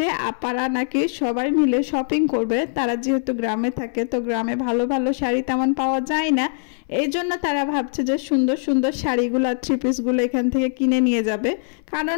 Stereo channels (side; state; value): right; silent; 62 dB below the other